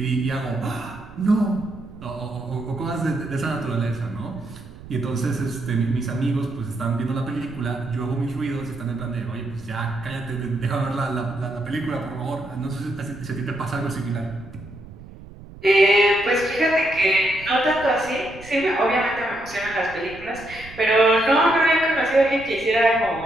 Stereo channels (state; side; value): noise; right; rumble, 17 dB below the sound